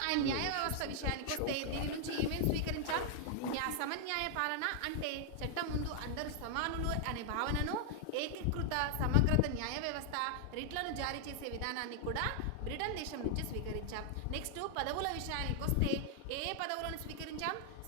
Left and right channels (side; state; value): both; different; correlation 0.00